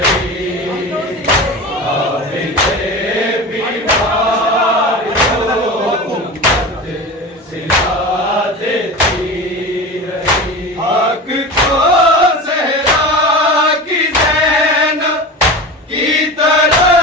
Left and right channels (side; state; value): both; normal; correlation 0.30